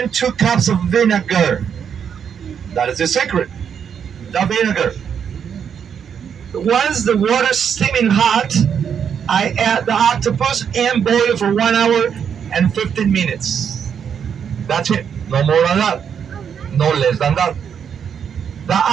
2 cups of vinegar. That is the secret. The vinegar. Once the water's steaming hot, I add the octopus and boil it for 1 hour and 15 minutes. That's it. No more than that. No less than that. The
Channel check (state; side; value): quieter; left; 7.7 dB